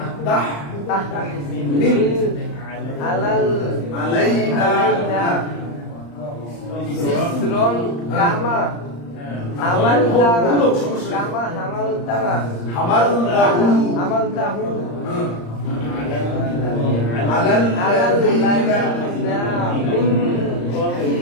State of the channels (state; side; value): late; right; 35 ms